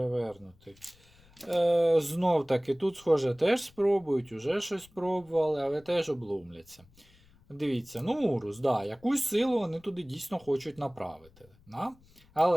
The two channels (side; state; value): left; noise; rumble, 28 dB below the sound